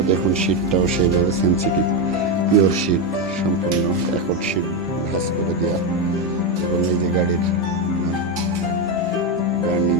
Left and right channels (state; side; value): normal; both; correlation 0.08